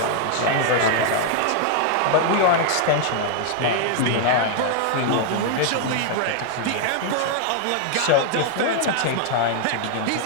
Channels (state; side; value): different; both; correlation 0.00